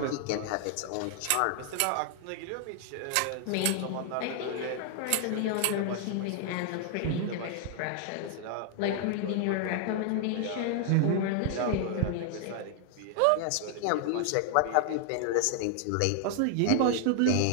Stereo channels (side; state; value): both; different; correlation 0.00